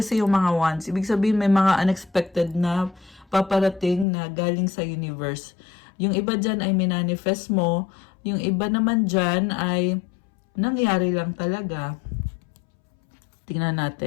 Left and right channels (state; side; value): drops out; right; at 4.0 s